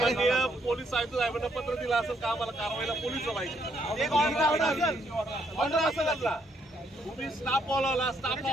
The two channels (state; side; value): normal; both; correlation 0.72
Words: पोलीस आयुक्त साहेबांना पत्र दिलं असेल का आम्हाला कारवाईला पोलीस पाहिजे एक ऑर्डर असेल आपला तुम्ही स्टाफ बोलावला स्टाफ